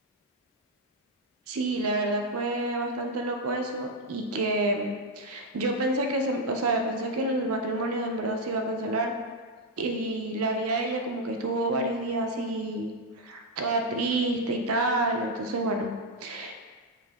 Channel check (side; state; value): both; normal; correlation 0.02